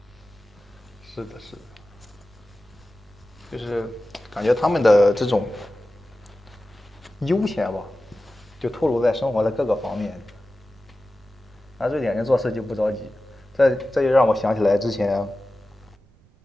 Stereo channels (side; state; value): right; noise; rumble, 29 dB below the sound